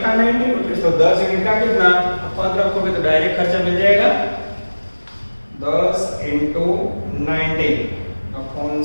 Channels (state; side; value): inverted; both; correlation -1.00